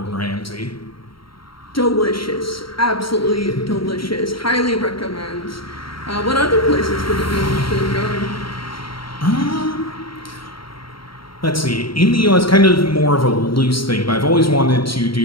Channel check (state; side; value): late; right; 0.74 ms